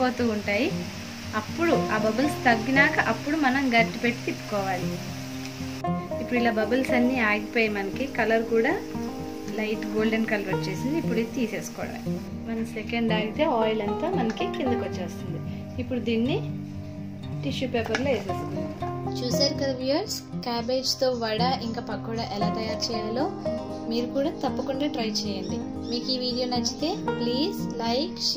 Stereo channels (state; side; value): identical; both; correlation 1.00